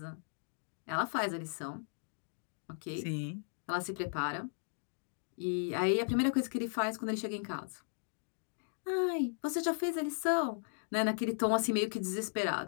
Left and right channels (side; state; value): right; silent; digital silence